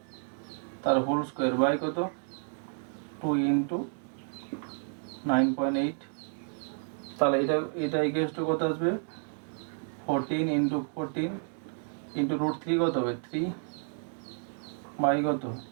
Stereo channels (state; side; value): silent; left; 57 dB below the other